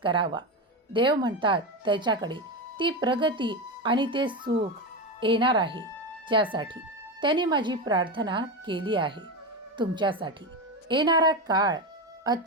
देव म्हणतात, त्याच्याकडे ती प्रगती आणि ते सुख येणार आहे ज्यासाठी त्यांनी माझी प्रार्थना केली आहे. तुमच्यासाठी येणारा काळ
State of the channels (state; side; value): normal; both; correlation 0.17